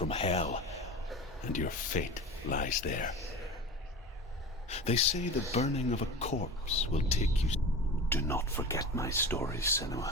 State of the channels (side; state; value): both; normal; correlation 0.32